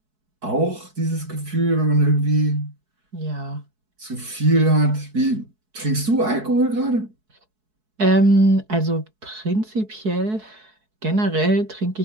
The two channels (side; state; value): left; late; 4.7 ms